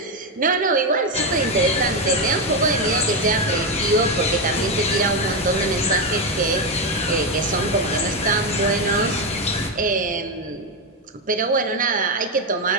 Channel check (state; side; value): normal; both; correlation 0.09